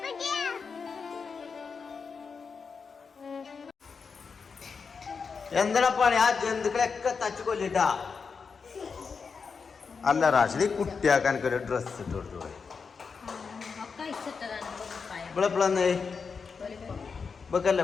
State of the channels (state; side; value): quieter; right; 5.4 dB